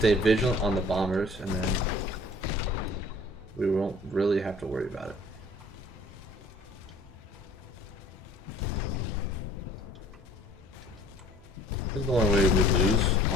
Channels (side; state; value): both; normal; correlation 0.52